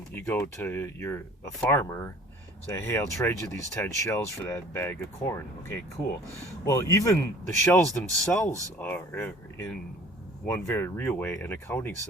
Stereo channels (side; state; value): both; normal; correlation 0.49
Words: you go to a farmer, say, hey, I'll trade you these 10 shells for that bag of corn. Okay, cool. Well, even the shells themselves are in one very real way, an accounting